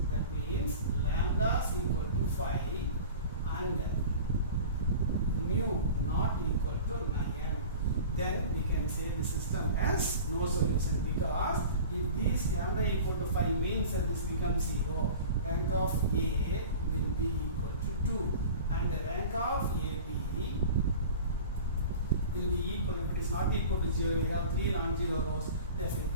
lambda is equal to 5 and mu not equal to 9. Then we can say the system has no solution, because if this lambda equal to 5 means that this becomes 0, rank of A will be equal to 2, and the rank of AB will be equal. If it is not equal to 0, we have 3 non-zero rows, therefore we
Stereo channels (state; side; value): inverted; both; correlation -0.38